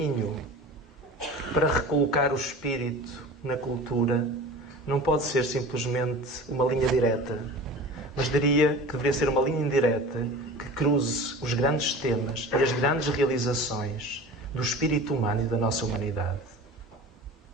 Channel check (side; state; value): both; normal; correlation 0.37